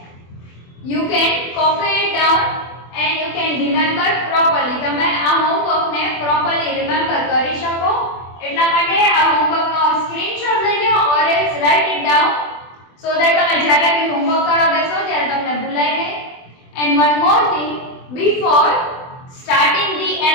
you can copy it down and you can remember properly. તમે આ homework ને properly remember કરી શકો એટલા માટે આ homework નો screenshot લઈ લો or else write it down so that તમે જ્યારે બી homework કરવા બેસો ત્યારે તમને ભૂલાય નહીં. And one more thing, before starting the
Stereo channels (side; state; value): right; late; 24 ms